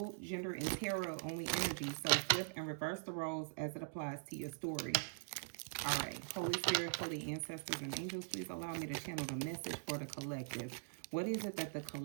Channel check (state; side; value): silent; left; digital silence